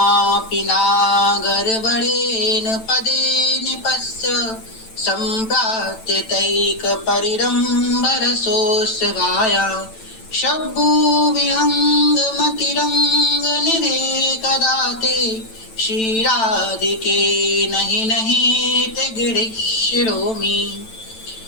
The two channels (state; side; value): late; right; 9.0 ms